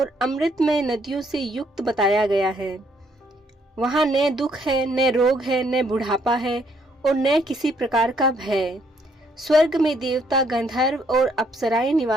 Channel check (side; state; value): both; normal; correlation 0.69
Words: अमृतमय नदियों से युक्त बताया गया है। वहाँ न दुख है, न रोग है, न बुढ़ापा है और न किसी प्रकार का भय। स्वर्ग में देवता, गंधर्व और अप्सराएं